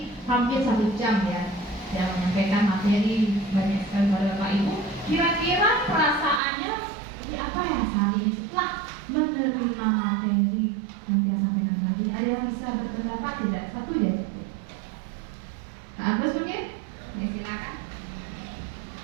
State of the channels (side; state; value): left; drops out; at 6.4 s